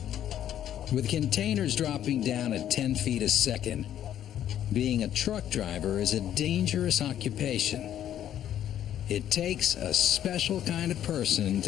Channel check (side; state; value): right; quieter; 10.8 dB